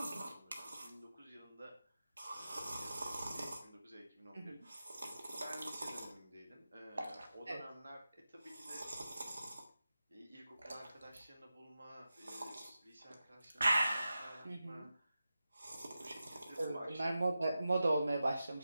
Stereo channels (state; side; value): inverted; both; correlation -0.92